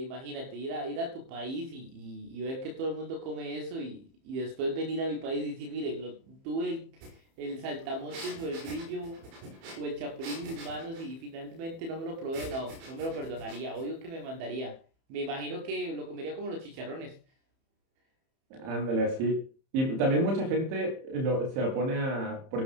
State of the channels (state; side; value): late; left; 30 ms